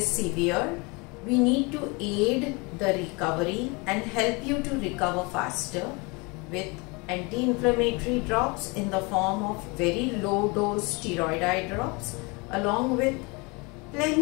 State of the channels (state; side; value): quieter; right; 28.2 dB